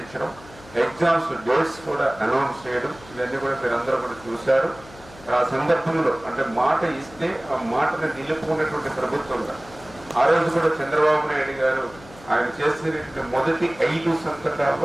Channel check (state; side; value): noise; left; hum, 21 dB below the sound